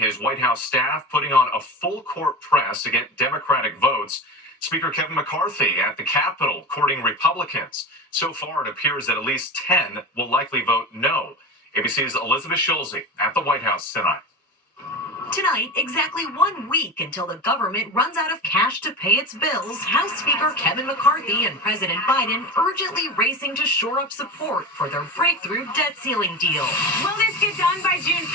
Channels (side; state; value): both; normal; correlation 0.27